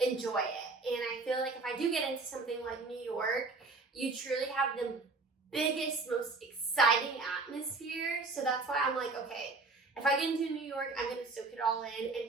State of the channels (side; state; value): left; quieter; 3.7 dB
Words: enjoy it. And I feel like if I do get into something like New York, you truly have the biggest, most exciting atmosphere. So that's why I'm like, okay, if I get into New York, I'm going to soak it all in